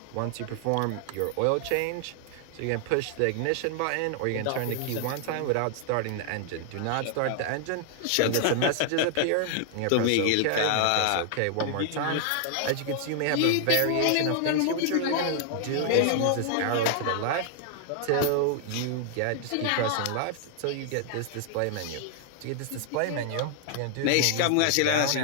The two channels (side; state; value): both; different; correlation 0.00